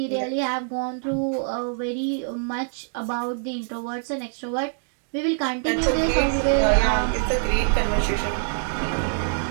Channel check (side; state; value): left; silent; digital silence